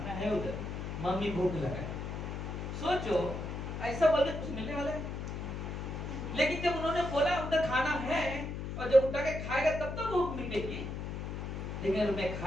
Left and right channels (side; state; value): left; noise; hum, 5 dB below the sound